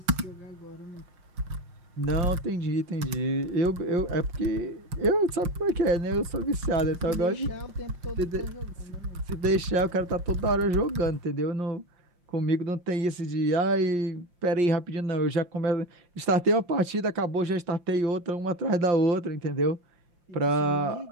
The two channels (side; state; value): left; late; 5.7 ms